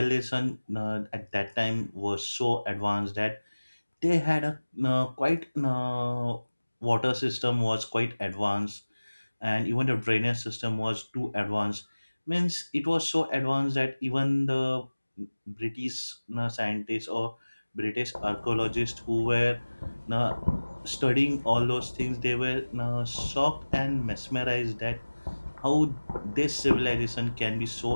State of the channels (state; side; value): inverted; both; correlation -1.00